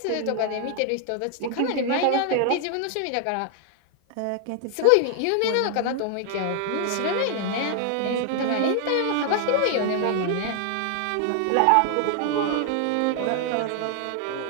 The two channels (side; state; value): both; different; correlation 0.00